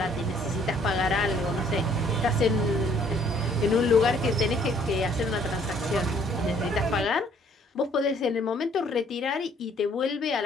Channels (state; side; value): normal; both; correlation 0.62